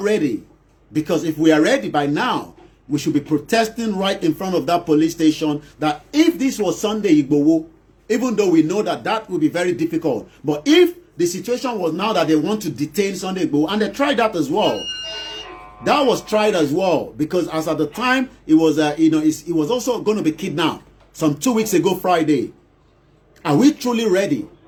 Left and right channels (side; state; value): both; identical; correlation 1.00